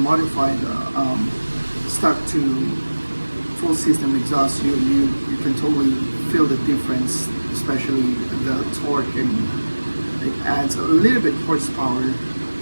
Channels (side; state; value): both; inverted; correlation -1.00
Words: the stock to full system exhaust, you can totally feel the difference, especially the torque, and it adds a little bit horsepower,